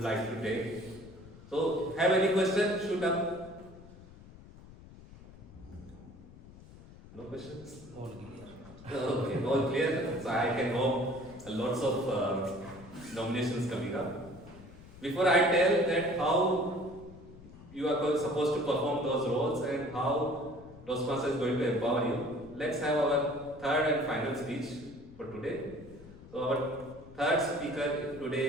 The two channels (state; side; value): noise; left; rumble, 19 dB below the sound